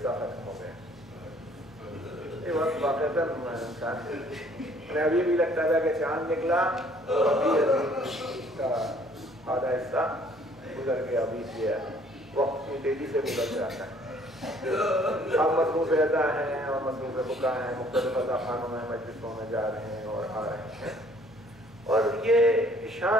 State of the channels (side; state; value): both; normal; correlation 0.59